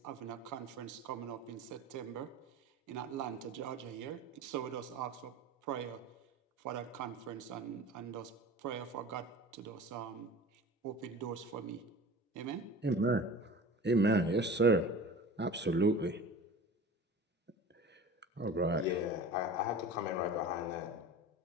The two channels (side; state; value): both; normal; correlation 0.37